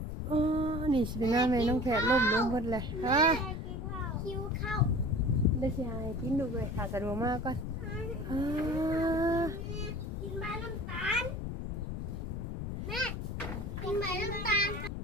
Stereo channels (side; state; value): left; noise; rumble, 5 dB below the sound